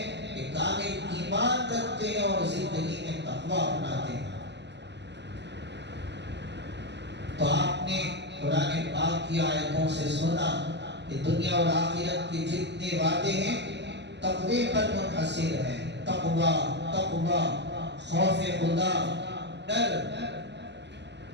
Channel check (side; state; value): left; late; 0.50 ms